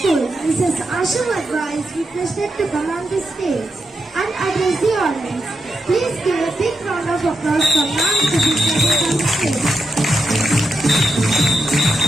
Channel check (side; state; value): both; normal; correlation 0.85